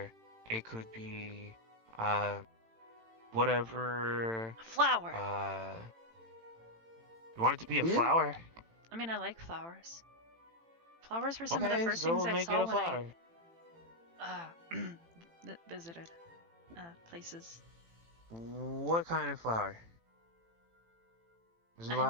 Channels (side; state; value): left; late; 18 ms